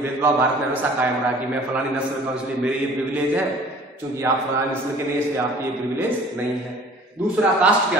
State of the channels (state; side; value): normal; both; correlation 0.49